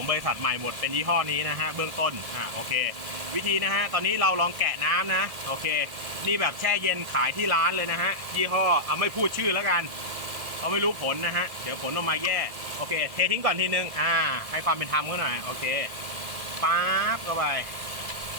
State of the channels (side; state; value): left; late; 1.7 ms